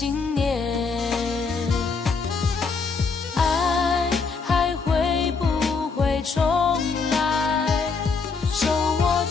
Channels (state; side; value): quieter; right; 4.8 dB